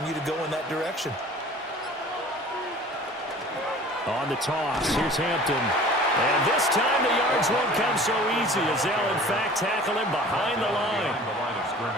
to go in that direction. On the toss, here's Hampton. And this time the yards won't come so easy as they'll, in fact, tackle him behind the line.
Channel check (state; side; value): normal; both; correlation 0.45